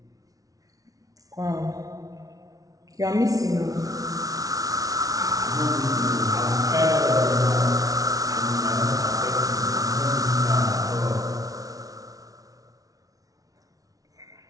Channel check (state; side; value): late; left; 0.18 ms